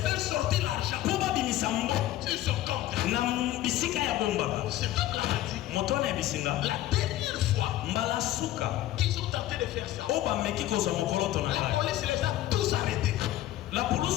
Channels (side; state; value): right; quieter; 14.3 dB